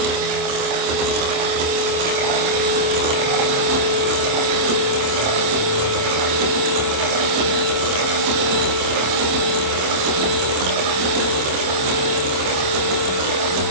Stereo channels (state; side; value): late; left; 26 ms